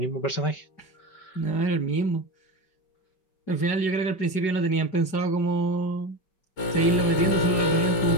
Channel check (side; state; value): right; late; 5.3 ms